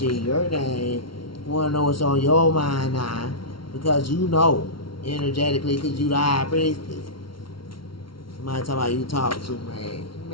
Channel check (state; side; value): late; right; 0.74 ms